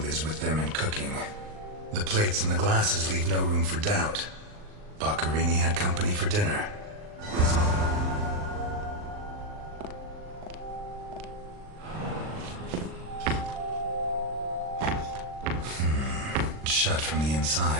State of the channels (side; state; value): left; late; 39 ms